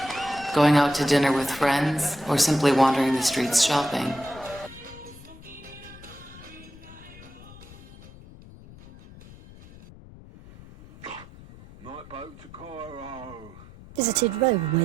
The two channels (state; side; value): noise; left; rumble, 19 dB below the sound